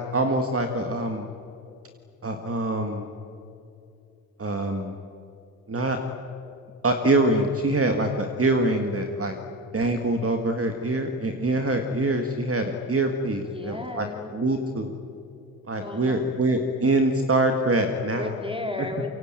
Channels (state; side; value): normal; both; correlation 0.25